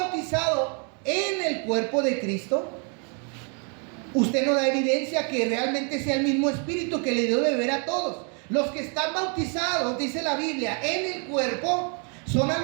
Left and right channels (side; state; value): left; quieter; 38.8 dB